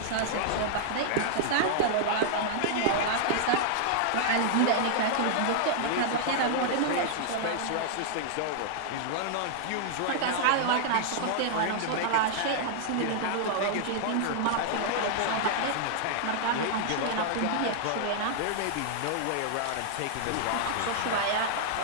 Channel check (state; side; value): different; both; correlation -0.01